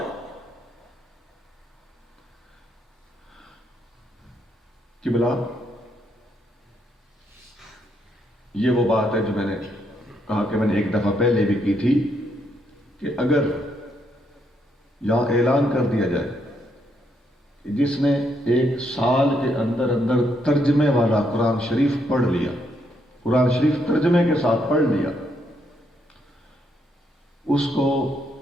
کہ بلا یہ وہ بات ہے جو میں نے کہا کہ میں نے ایک دفعہ پہلے بھی کی تھی کہ اگر یہاں اعلان کر دیا جائے کہ جس نے 1 سال کے اندر اندر ترجمے والا قرآن شریف پڑھ لیا، قرآن شریف ترجمے کے ساتھ پڑھ لیا، اس کو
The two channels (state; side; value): normal; both; correlation 0.75